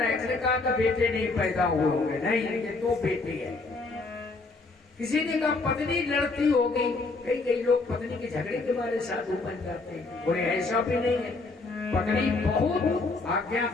इसने कहा कि बेटे नहीं पैदा हुए होंगे। नहीं, ये तो बेटे है। किसी ने कहा पत्नी लड़ती होगी। कई लोग पत्नी के झगड़े के बारे साधु बन जाते हैं, और ऐसा भी नहीं है। पत्नी बहुत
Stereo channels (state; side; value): quieter; right; 3.6 dB